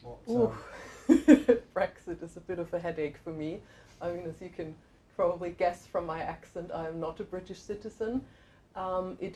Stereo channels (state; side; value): identical; both; correlation 1.00